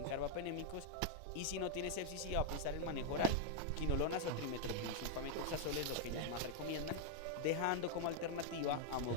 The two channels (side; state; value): both; different; correlation 0.00